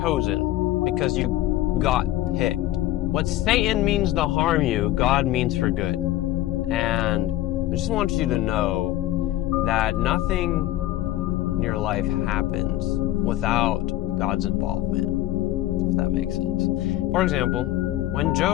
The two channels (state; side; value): quieter; right; 14.8 dB